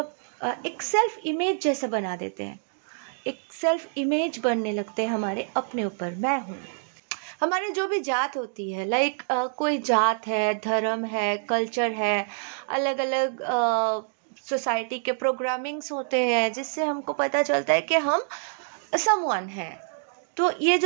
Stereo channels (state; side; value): silent; left; digital silence